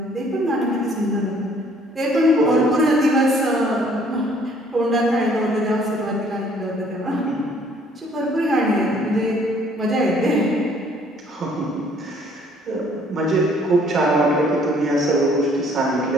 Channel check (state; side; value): normal; both; correlation 0.60